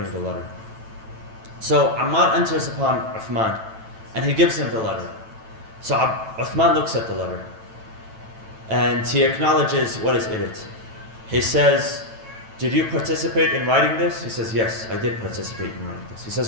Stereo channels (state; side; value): late; left; 9.1 ms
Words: the letter. So Ammar enters upon Uthman and he gives him the letter. So Uthman looks at the letter and he acknowledges what is in it. He says, did you participate in writing this? He says, yes, I did participate in writing this. He says,